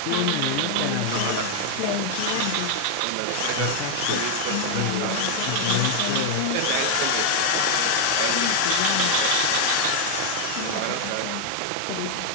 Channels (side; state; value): both; different; correlation 0.00